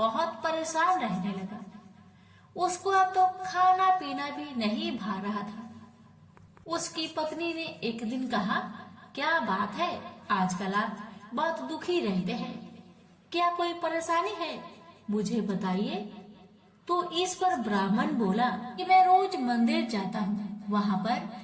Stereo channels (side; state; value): both; identical; correlation 1.00